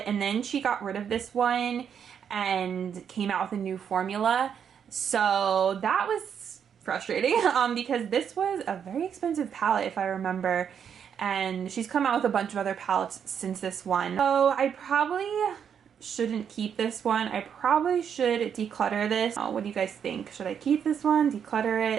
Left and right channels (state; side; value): quieter; left; 7.9 dB